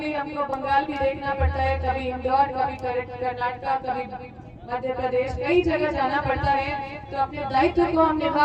हमको बंगाल भी देखना पड़ता है, कभी इंदौर, कभी कर्नाटक, कभी मध्य प्रदेश, कई जगह जाना पड़ता है, तो अपने दायित्व को हम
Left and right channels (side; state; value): both; identical; correlation 1.00